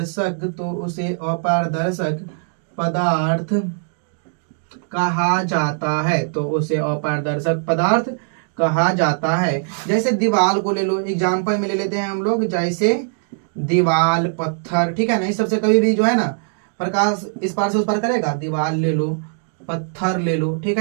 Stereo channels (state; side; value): silent; left; digital silence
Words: अपारदर्शक पदार्थ कहा जाता है। तो उसे अपारदर्शक पदार्थ कहा जाता है। जैसे दीवाल को ले लो, एग्जाम्पल में ले लेते हैं हम लोग, जैसे दीवाल, पत्थर। ठीक है ना, इस सबसे कभी भी जो है ना प्रकाश इस पार से उस पार करेगा। दीवाल ले लो, पत्थर ले लो, ठीक